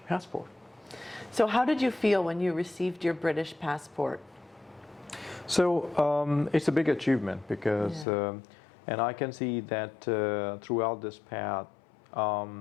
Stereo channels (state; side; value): drops out; right; at 8.1 s